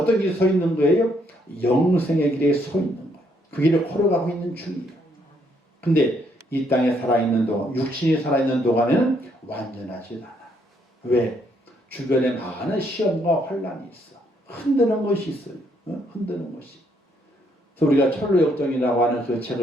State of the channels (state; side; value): normal; both; correlation 0.71